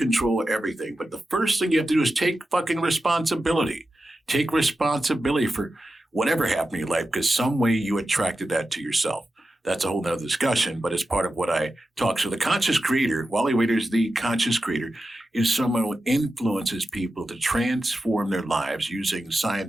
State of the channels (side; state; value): both; normal; correlation 0.92